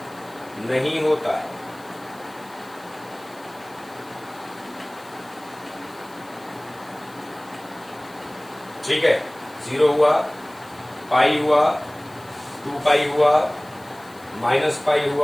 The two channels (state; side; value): noise; left; hiss, 25 dB below the sound